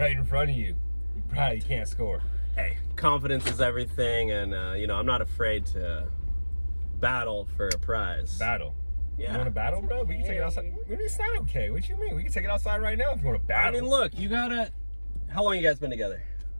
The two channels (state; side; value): inverted; both; correlation -1.00